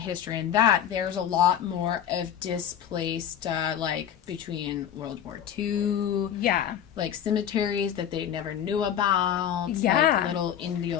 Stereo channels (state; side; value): quieter; right; 9.6 dB